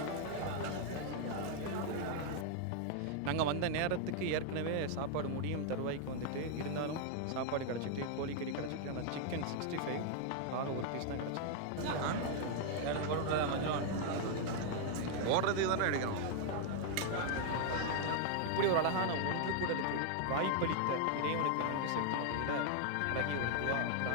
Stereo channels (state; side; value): different; both; correlation 0.00